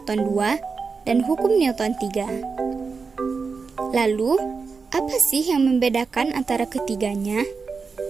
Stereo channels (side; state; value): left; quieter; 4.9 dB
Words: 2, dan hukum Newton 3. Lalu, apa sih yang membedakan antara ketiganya?